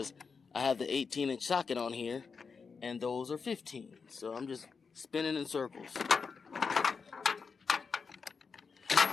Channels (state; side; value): quieter; right; 5.3 dB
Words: I have the 18-inch socket on here, and those are 15. So I'm just spinning in circles.